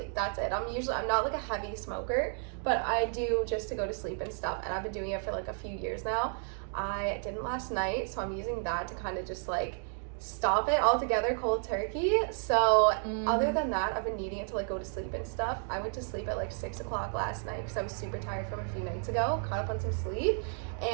That's it. I'm not a heavy smoker, but I do just to go to sleep and stuff. And I've been doing it for a few years now. I didn't last night, so I'm using that to kind of just stop it altogether, cold turkey. So other than that, I've been needing it to go to sleep and stuff. I went to sleep at 6 o'clock last night because I was super tired from a few nights ago, caught up on some sleep,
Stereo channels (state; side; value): silent; left; 56 dB below the other